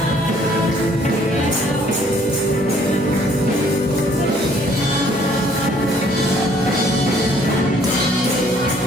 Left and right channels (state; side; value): noise; left; hum, 24 dB below the sound